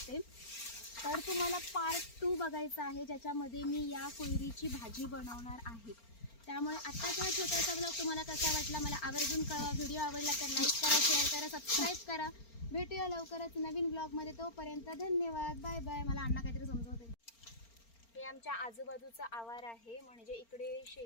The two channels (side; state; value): right; late; 4.4 ms